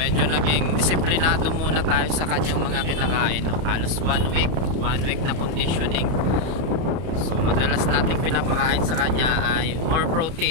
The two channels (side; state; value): left; late; 31 ms